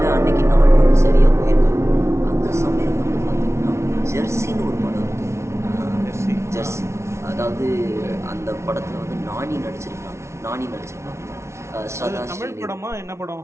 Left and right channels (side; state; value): left; late; 0.13 ms